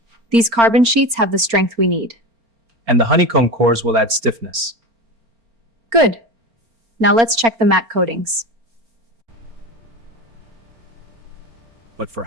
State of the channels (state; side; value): late; left; 4.4 ms